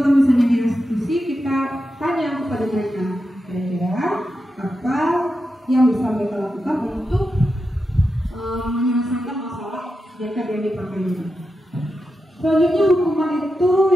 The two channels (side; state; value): both; normal; correlation 0.89